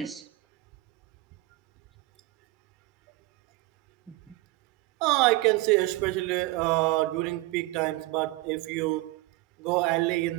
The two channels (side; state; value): left; quieter; 19.9 dB